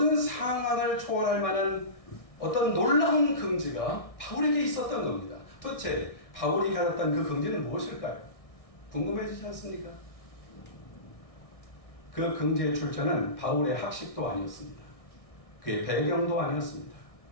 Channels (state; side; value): late; right; 1.6 ms